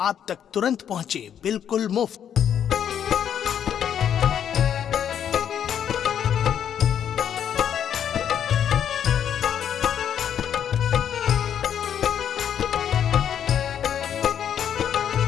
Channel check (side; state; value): right; quieter; 9.1 dB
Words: तक तुरंत पहुंचे बिल्कुल मुफ्त।